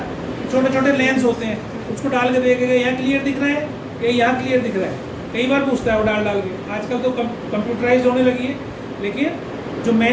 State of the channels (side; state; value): both; identical; correlation 1.00